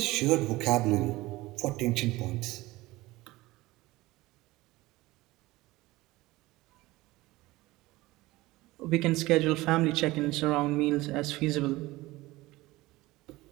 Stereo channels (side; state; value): left; quieter; 19.4 dB